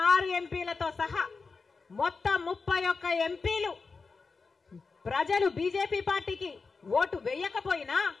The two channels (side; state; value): right; quieter; 4.5 dB